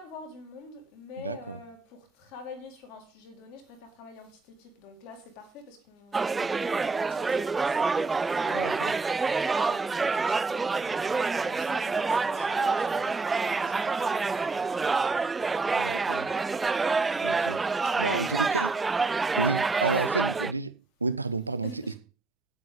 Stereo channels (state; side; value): quieter; left; 3.8 dB